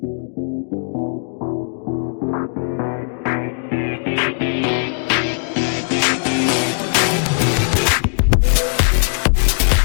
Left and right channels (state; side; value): silent; right; digital silence